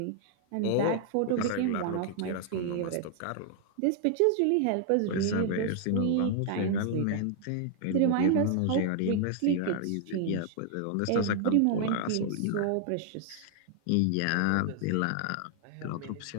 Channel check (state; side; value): different; both; correlation -0.01